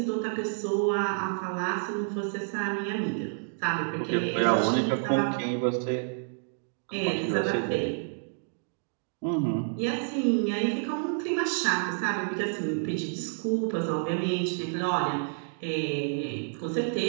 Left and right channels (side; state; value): left; silent; digital silence